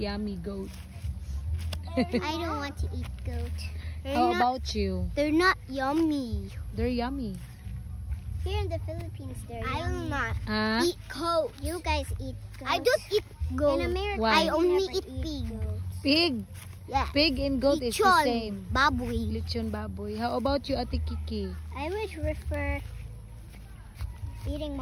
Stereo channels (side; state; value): both; identical; correlation 1.00